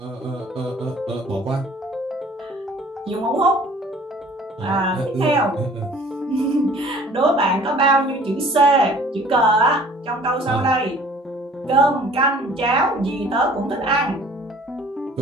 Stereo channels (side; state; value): both; normal; correlation 0.51